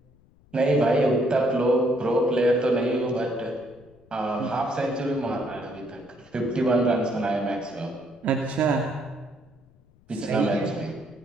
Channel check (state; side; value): noise; left; rumble, 30 dB below the sound